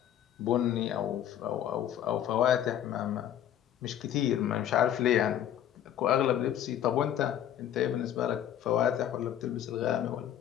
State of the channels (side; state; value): right; quieter; 10.6 dB